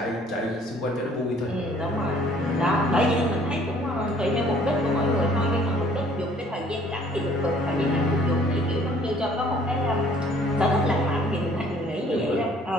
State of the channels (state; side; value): normal; both; correlation 0.58